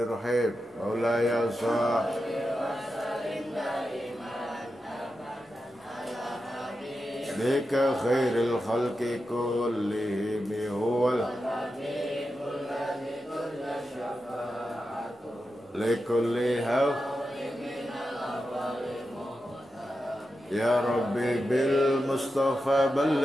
Maulaya shalli bika khairil khalqi kullihim huwal likulli haw ya rabbi bil mustafa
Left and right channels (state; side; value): normal; both; correlation 0.90